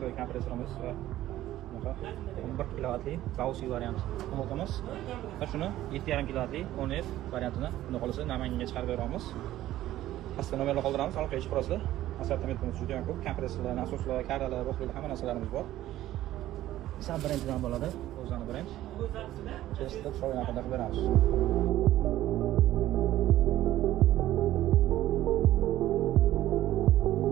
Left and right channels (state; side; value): quieter; left; 14.2 dB